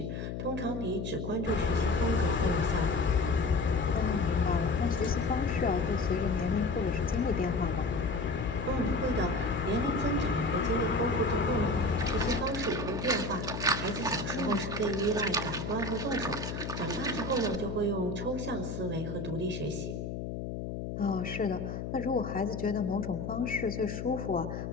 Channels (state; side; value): noise; left; hum, 5 dB below the sound